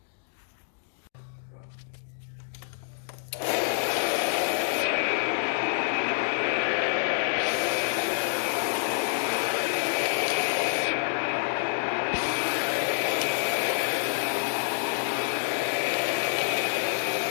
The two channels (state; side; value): silent; right; digital silence